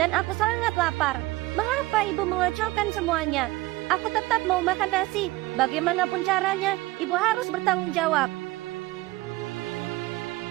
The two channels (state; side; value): quieter; left; 19.6 dB